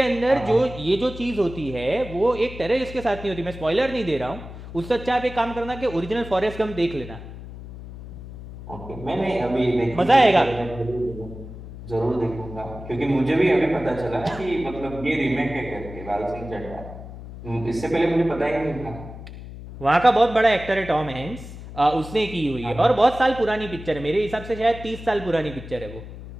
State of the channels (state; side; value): noise; left; hum, 13 dB below the sound